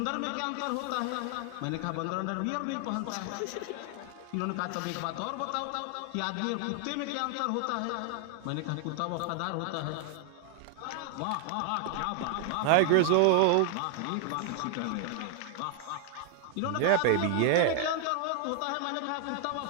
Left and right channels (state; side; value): different; both; correlation 0.00